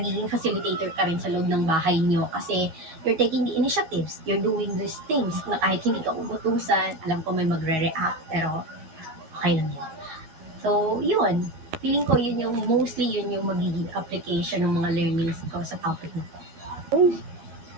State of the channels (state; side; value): late; left; 12 ms